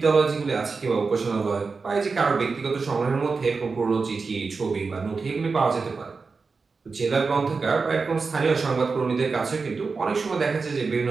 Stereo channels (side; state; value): left; quieter; 4.5 dB